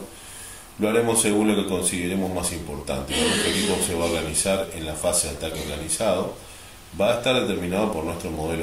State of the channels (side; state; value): both; identical; correlation 1.00